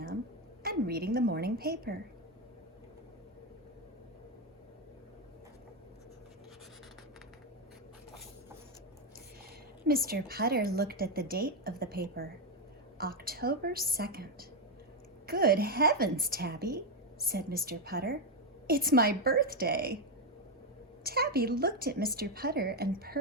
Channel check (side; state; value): both; normal; correlation 0.05